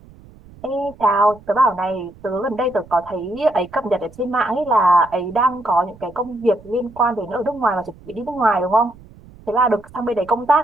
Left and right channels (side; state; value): right; noise; rumble, 23 dB below the sound